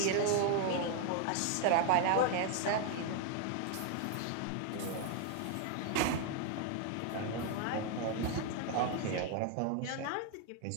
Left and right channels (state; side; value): different; both; correlation 0.00